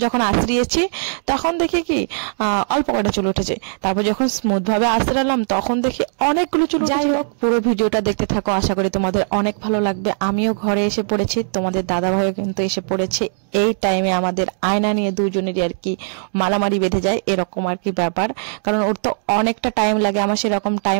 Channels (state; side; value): silent; left; digital silence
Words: যখন আশ্রিয়েছি তখন দেখি কি অল্প কটা চুল উঠেছে। তারপর যখন স্মুথ ভাবে আশ্রালাম তখন দেখি অনেকগুলো চুল। যাই হোক, পুরো ভিডিওটা দেখতে থাকো, আশা করি তোমাদের অনেক ভালো লাগবে। আমিও ঘরে এসে পড়েছি, তোমাদের দাদা ভাইও কিন্তু এসে পড়েছে। এই টাইমে আমাদের আয়না নিয়ে দুজনেরই আর কি মারামারি বেঁধে যায়, এরকম আর কি ব্যাপার। কারণ ওর তো অনেকটা টাইম লাগে, আমার সেরকম